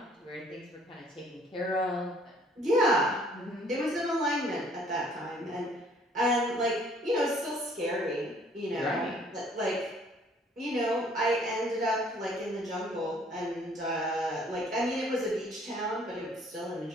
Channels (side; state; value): both; normal; correlation 0.59